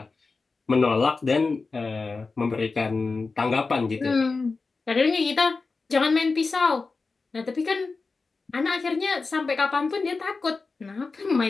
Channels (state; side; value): quieter; right; 4.1 dB